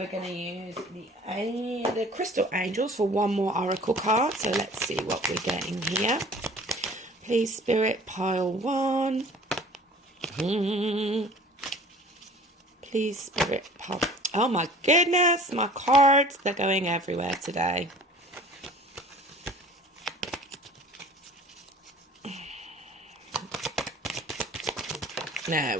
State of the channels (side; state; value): both; normal; correlation 0.48